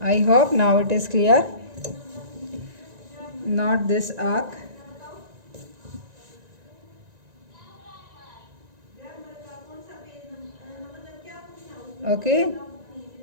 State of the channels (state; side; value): late; left; 1.9 ms